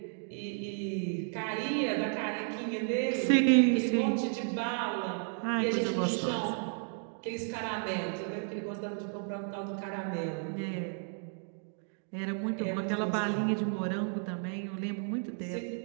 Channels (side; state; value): left; silent; 56 dB below the other